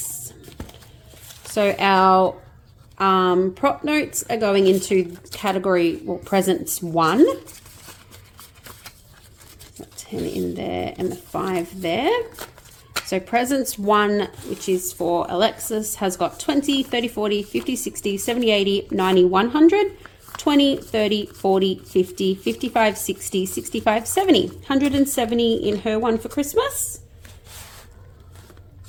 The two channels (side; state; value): both; identical; correlation 1.00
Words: So our prop notes are going into category, well, presents 1. So 10 in there and the 5 there. So presents 1, which is for Alexis, has got 20, 30, 40, 50, 60, 70, 80, 90, 100, 20, 30, 40, 50, 55, 60, 65, 70. 170 in her one for Christmas.